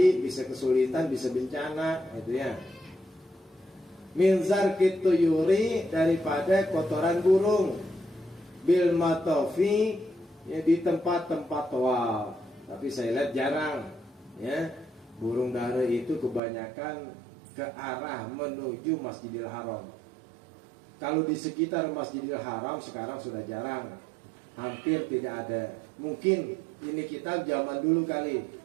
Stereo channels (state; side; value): drops out; left; at 16.4 s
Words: bisa kesulitan, bisa bencana, itu ya. Min zarkit tuyuri, daripada kotoran burung, bil matofi, ya, di tempat-tempat tawaf. Tapi saya lihat jarang, ya, burung dara itu kebanyakan ke arah menuju Masjidil Haram. Kalau di sekitar Masjidil Haram sekarang sudah jarang, hampir tidak ada. Mungkin ini kitab zaman dulu kali.